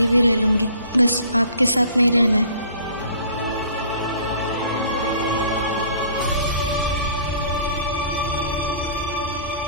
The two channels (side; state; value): both; inverted; correlation -0.51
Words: भी रह लूंगी, बस आपके साथ नहीं रहना है।